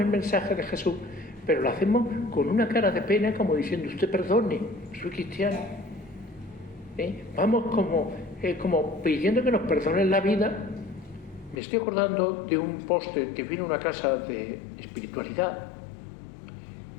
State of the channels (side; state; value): right; drops out; at 11.6 s